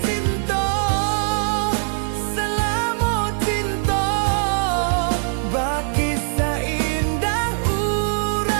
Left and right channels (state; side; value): silent; left; digital silence